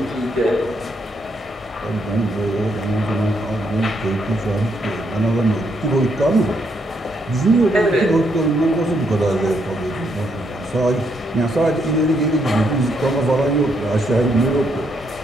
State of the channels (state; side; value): normal; both; correlation 0.75